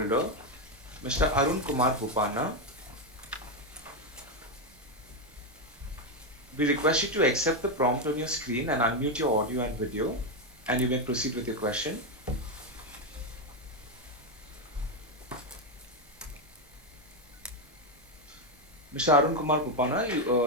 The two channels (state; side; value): normal; both; correlation 0.06